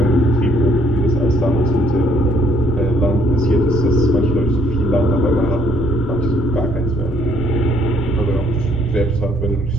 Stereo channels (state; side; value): normal; both; correlation 0.65